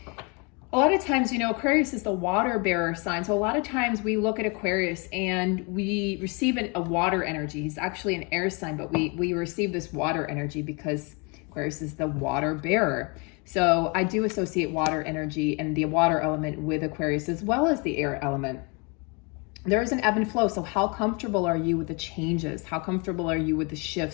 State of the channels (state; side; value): quieter; right; 31.7 dB